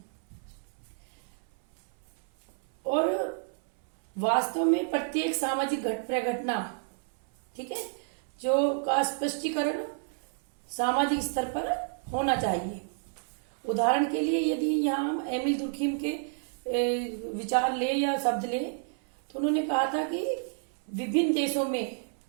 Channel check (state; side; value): silent; left; 57 dB below the other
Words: और वास्तव में प्रत्येक सामाजिक प्रघटना, ठीक है, जो का स्पष्टीकरण सामाजिक स्तर पर होना चाहिए। उदाहरण के लिए यदि यहाँ हम एमिल दुर्खीम के विचार ले या शब्द ले, तो उन्होंने कहा था कि विभिन्न देशों में